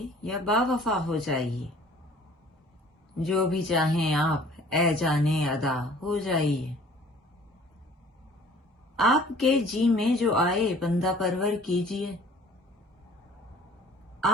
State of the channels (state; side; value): normal; both; correlation 0.52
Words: یا باوفا ہو جائیے، جو بھی چاہیں آپ اے جانے ادا ہو جائیے۔ آپ کے جی میں جو آئے بندہ پرور کیجیے،